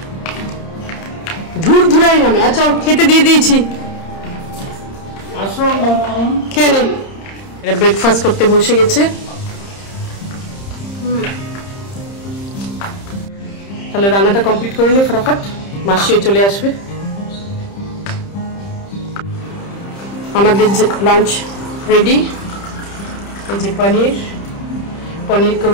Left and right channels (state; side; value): late; right; 30 ms